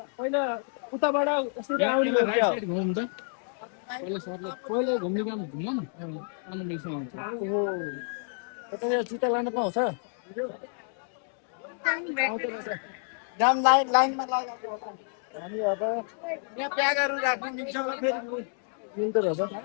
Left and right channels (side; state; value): right; silent; 58 dB below the other